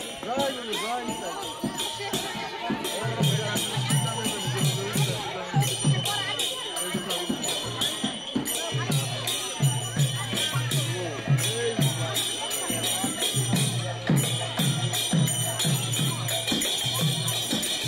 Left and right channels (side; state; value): both; identical; correlation 1.00